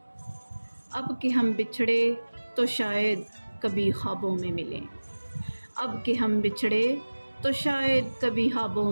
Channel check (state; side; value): inverted; both; correlation -1.00